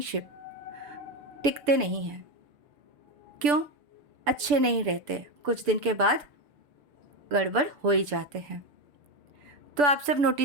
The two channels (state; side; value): late; left; 6.9 ms